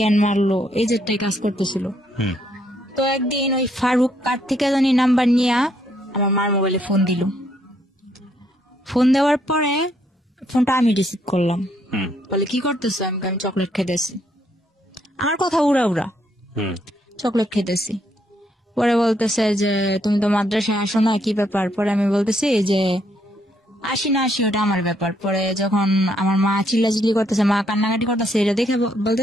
মারলো, এই যেটাই কাজ করতেছিল। তো একদিন ওই ফারুক কার থেকে জানি নাম্বার নিয়ে আমার মার মোবাইলে ফোন দিল। ফোন দেওয়ার পরে ফোনটা আমি রিসিভ করলাম। বলে কি করতেছো? আমি চকলেট খেতেছি। আমার কথা উড়া উড়া, চকলেট খেতেছি। পরে বলতেছে যে তুমি তো মাদ্রাসায় আসো না, কি ব্যাপার? পরে আমি বলতেছি যে আসি না আসি ওটা আমার ব্যাপার। পরে যখন আমার মা চিল্লাচিল্লি করতেছে, মা কান্নাকাটি করতেছে, এটা দেখে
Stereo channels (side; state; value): both; normal; correlation 0.72